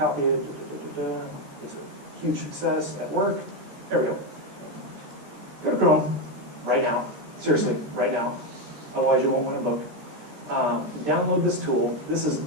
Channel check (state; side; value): late; left; 13 ms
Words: it, it's a huge success at work. There we go. Go to Chrome right now, seriously, right now, otherwise you won't win a book. Download this tool. This